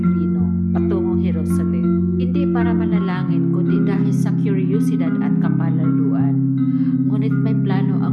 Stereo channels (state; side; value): identical; both; correlation 1.00